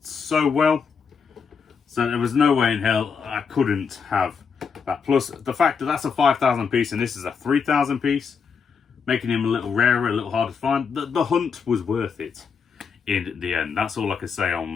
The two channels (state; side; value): quieter; right; 6.0 dB